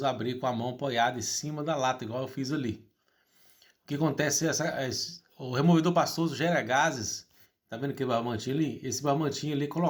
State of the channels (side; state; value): both; identical; correlation 1.00